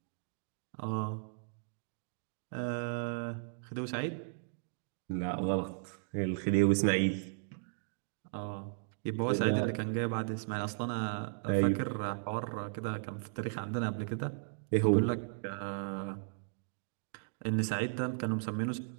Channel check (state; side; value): silent; left; digital silence